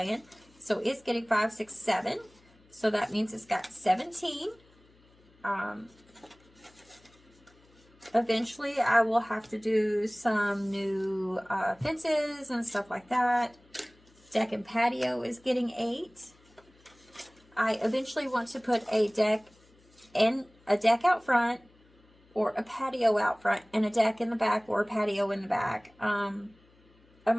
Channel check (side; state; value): left; noise; hum, 30 dB below the sound